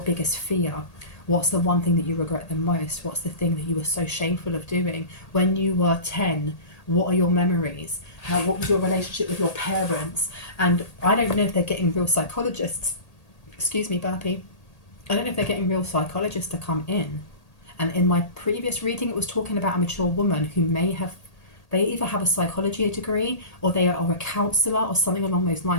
biggest fear? What's the one thing that you regret the most? What's the thing that you were so shameful of doing when you were 10? What are your memories? What was your relationship with your parents? And I don't know if they're getting real psychologists. Excuse me, burpee. I don't know if they're getting real psychologists to come in. And in my previous reading, it was talking about a mature woman who they either have a psychology degree, or they are a counsellor or something along those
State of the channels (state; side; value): late; right; 1.8 ms